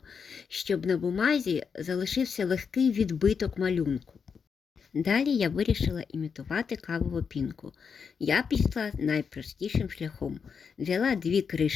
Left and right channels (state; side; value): quieter; right; 6.2 dB